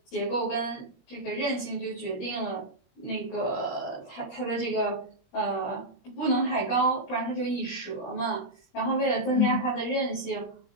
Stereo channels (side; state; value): right; late; 21 ms